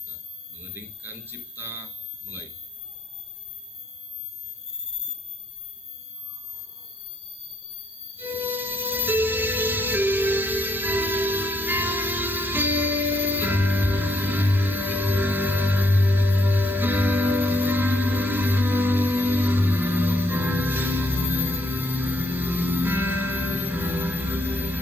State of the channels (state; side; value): normal; both; correlation 0.72